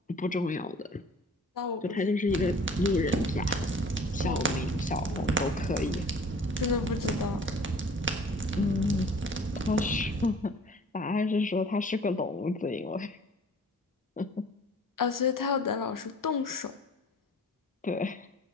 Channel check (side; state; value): both; normal; correlation 0.48